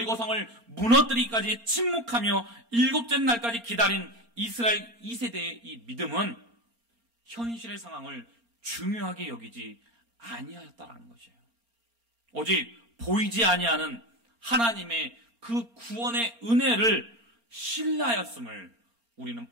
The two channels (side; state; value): left; late; 4.3 ms